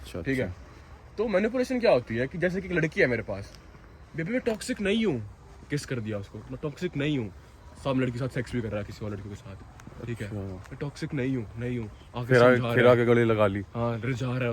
ठीक है। तो मैनिपुलेशन क्या होती है कि जैसे कि एक लड़की है मेरे पास, बेबी मैं टॉक्सिक नहीं हूँ, किस कर दिया उसको, मैं टॉक्सिक नहीं हूँ, सब लड़की के साथ सेक्स भी कर रहा है किसी और लड़की के साथ, ठीक है, मैं टॉक्सिक नहीं हूँ आगे फिर आगे गले लगा ली। हाँ रिझा रहा है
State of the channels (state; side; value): identical; both; correlation 1.00